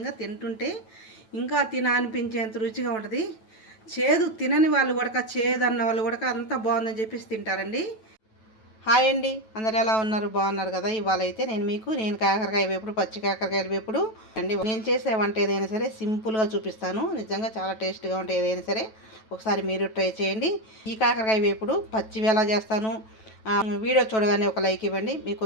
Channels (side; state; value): right; late; 9.2 ms